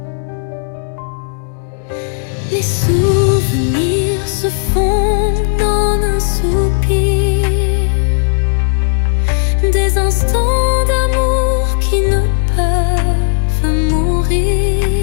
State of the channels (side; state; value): right; silent; digital silence